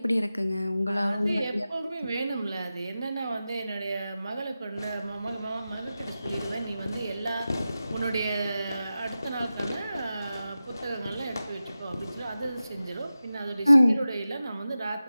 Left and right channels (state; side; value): inverted; both; correlation -0.94